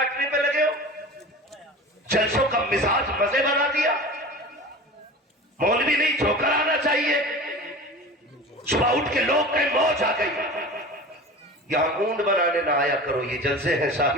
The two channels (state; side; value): normal; both; correlation 0.35